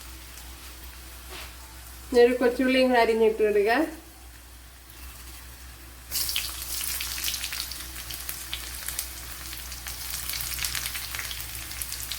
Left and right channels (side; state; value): both; identical; correlation 1.00